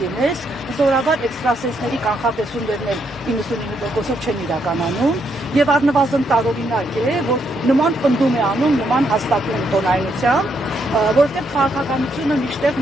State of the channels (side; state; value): both; normal; correlation 0.76